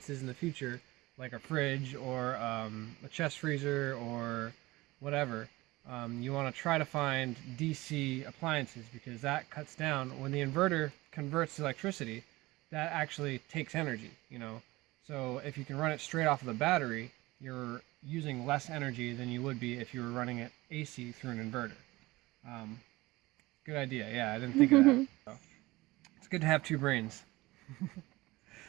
in the future, like a fridge or a chest freezer or whatever, you want to try to find DC appliances, because that cuts down, when the inverter converts electricity, that actually takes energy, So if you can run it straight off of the battery, you're using less energy than you would be if you were running it AC through an inverter. Good idea. Yeah, I didn't think of that. So, it's good to have two brains.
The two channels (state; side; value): quieter; left; 20.2 dB